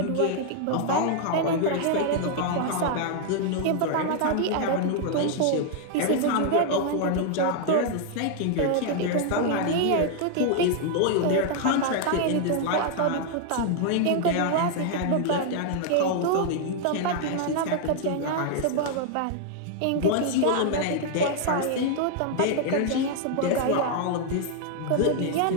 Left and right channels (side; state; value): both; different; correlation 0.00